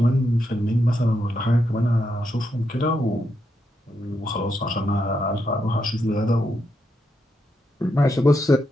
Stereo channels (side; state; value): both; normal; correlation 0.82